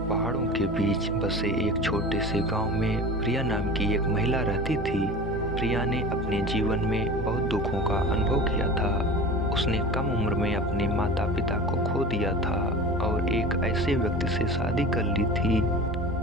पहाड़ों के बीच बसे एक छोटे से गांव में प्रिया नाम की एक महिला रहती थी। प्रिया ने अपने जीवन में बहुत दुखों का अनुभव किया था। उसने कम उम्र में अपने माता पिता को खो दिया था और एक ऐसे व्यक्ति से शादी कर ली थी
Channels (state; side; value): normal; both; correlation 0.35